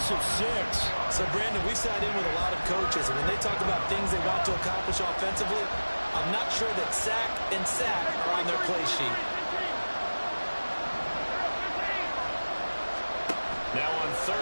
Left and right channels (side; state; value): both; inverted; correlation -1.00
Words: of 6. So, Brandon, we sat in with a lot of coaches, and when they talk about things they want to accomplish offensively, I'm not sure that sack and sack are on their play sheet. Now on